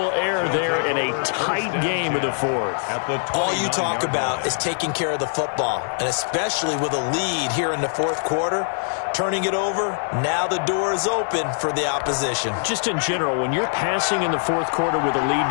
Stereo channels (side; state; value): right; silent; digital silence